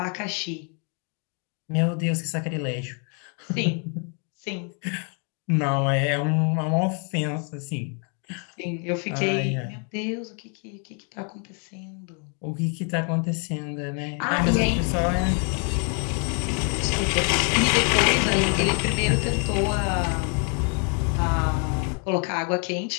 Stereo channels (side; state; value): right; quieter; 39.9 dB